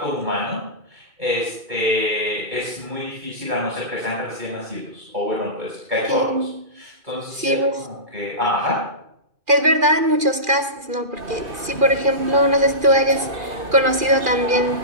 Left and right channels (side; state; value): left; late; 2.4 ms